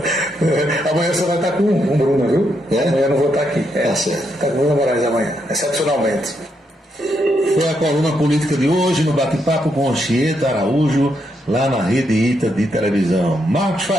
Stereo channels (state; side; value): normal; both; correlation 0.79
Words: Amanhã você vai estar com o Bruno, viu? Amanhã eu não vou estar aqui. Tá certo. Está com o Bruno Moraes amanhã, excepcionalmente. Foi a coluna política de hoje no bate-papo com Anchieta Araújo, lá na Rede ITA de televisão. Marcos